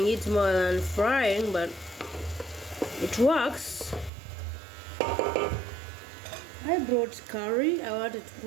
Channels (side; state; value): left; drops out; at 4.1 s